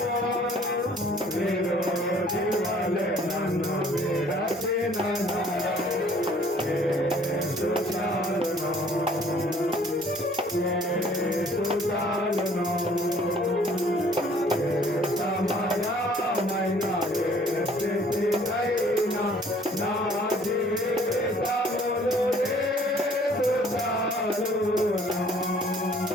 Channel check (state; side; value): normal; both; correlation 0.57